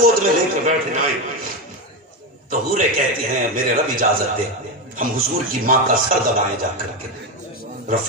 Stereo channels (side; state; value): both; normal; correlation 0.12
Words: میں لے کے بیٹھ جائیں تو حوریں کہتی ہیں میرے رب اجازت دے ہم حضور کی ماں کا سر دبائیں جا کر کے. رب